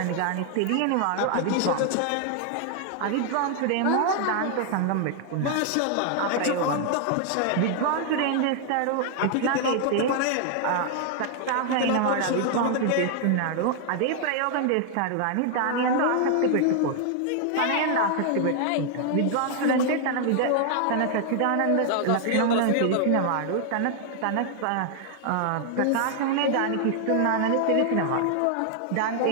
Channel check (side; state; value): both; different; correlation 0.00